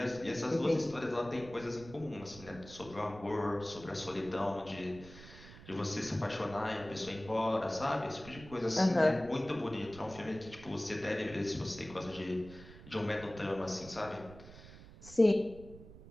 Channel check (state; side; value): noise; right; rumble, 17 dB below the sound